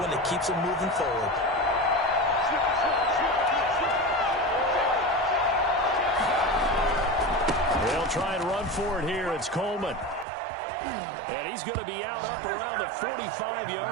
that keeps them moving forward. They'll try and run for it here. It's Coleman. And he's going to be out up around the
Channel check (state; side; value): drops out; left; at 10.2 s